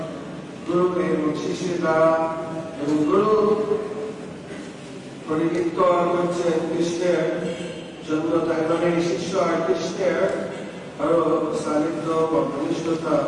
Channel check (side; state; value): both; identical; correlation 1.00